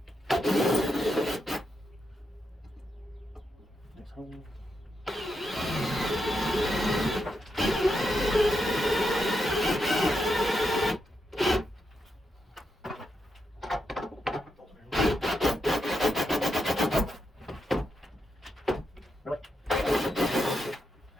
Next hole. Really?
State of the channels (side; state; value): both; normal; correlation 0.84